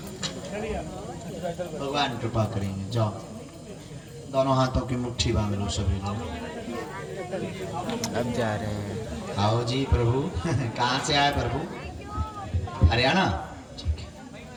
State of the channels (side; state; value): both; identical; correlation 1.00